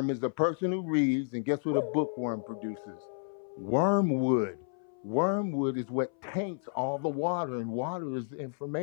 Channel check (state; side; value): silent; right; 57 dB below the other